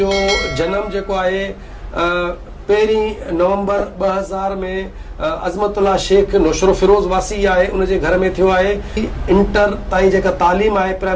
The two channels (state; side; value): identical; both; correlation 1.00